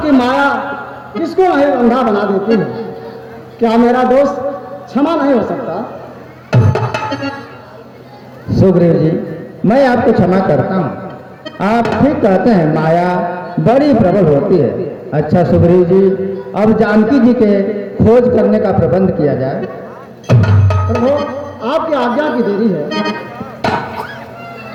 माया किसको नहीं अंधा बना देती है? क्या मेरा दोष क्षमा नहीं हो सकता? सुग्रीव जी, मैं आपको क्षमा करता हूँ। आप ठीक कहते हैं, माया बड़ी प्रबल होती है। अच्छा सुग्रीव जी, अब जानकी जी के खोज करने का प्रबंध किया जाए। प्रभु, आपकी आज्ञा की देरी है।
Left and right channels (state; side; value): identical; both; correlation 1.00